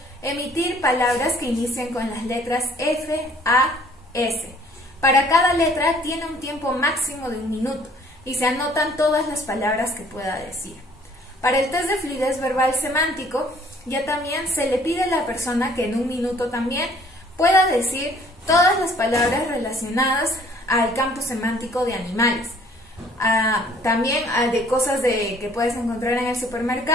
emitir palabras que inicien con las letras F, A, S. Para cada letra tiene un tiempo máximo de 1 minuto y se anotan todas las palabras que pueda decir. Para el test de fluidez verbal semántico, ya también se le pide a la persona que en 1 minuto también pueda decir todas las palabras relacionadas al campo semántico de animales. También de cosas que puedes encontrar en el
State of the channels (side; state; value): both; normal; correlation 0.58